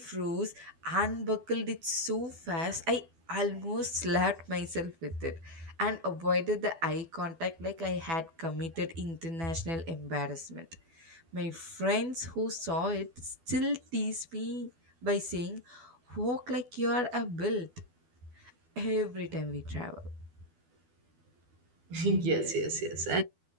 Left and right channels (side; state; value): left; late; 12 ms